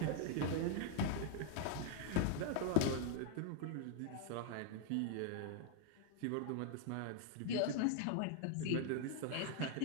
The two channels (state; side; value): different; both; correlation 0.00